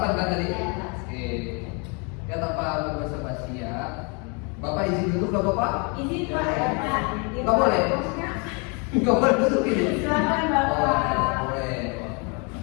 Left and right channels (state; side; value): quieter; right; 33.7 dB